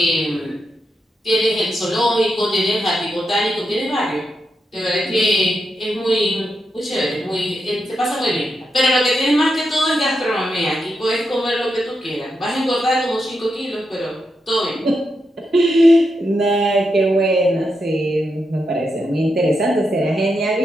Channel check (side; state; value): both; normal; correlation 0.85